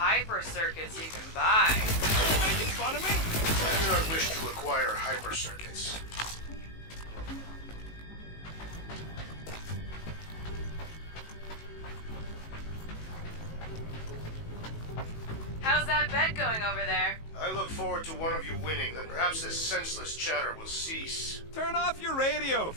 circuits you can buy. You making fun of me? I do not wish to acquire hyper circuits. How's that bet going over there? I look forward to one of you winning, then perhaps this senseless chatter will cease. Turn off your radio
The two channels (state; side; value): late; right; 19 ms